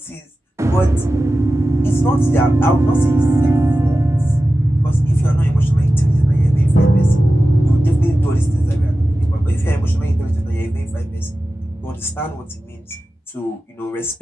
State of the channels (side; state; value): both; normal; correlation 0.94